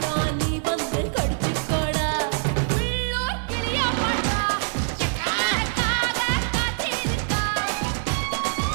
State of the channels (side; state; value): left; silent; digital silence